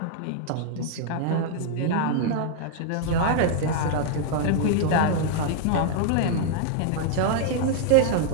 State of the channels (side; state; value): both; different; correlation -0.01